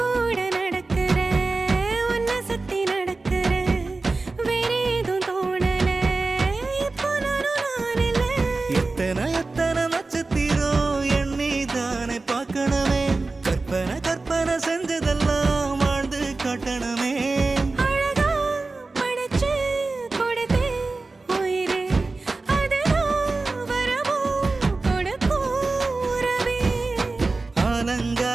நடக்கிற உன்னை சுத்தி நடக்கிற வேற ஏதும் தோணல இப்போ நான் இல்ல எத்தனை எத்தனை நட்சத்திரம் எண்ணி தானே பார்க்கணுமே கற்பனை கற்பனை செஞ்சதெல்லாம் வாழ்ந்து காட்டணுமே அழகா படைச்சு கொடுத்தே உயிரே அதுதான் வரமோ கொடுக்கும் உறவே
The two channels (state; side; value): quieter; left; 3.6 dB